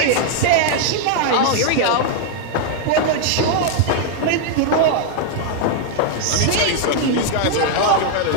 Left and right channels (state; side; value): different; both; correlation 0.00